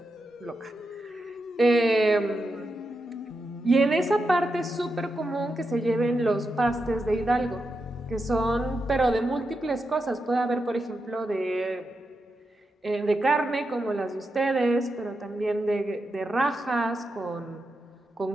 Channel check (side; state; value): both; normal; correlation 0.87